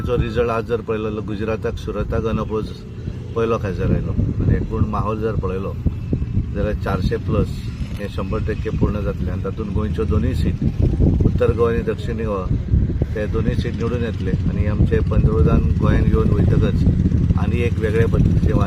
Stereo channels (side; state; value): both; identical; correlation 1.00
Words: रिजल्ट आज जर पळयलो, गुजराताक सुरताक अनअपोज पयलो खासदार आयलो आनी एकूण माहोल जर पळयलो जाल्यार 400+ हे 100% पूर्ण जातले आनी तातूंत गोंयच्यो दोनूय सीट, उत्तर गोवा आनी दक्षिण गोवा, ते दोनूय सीट निवडून येतले आनी आमचे पंतप्रधान गोंयांत येवन वयतकच आनी एक वेगळे पद्धतीचे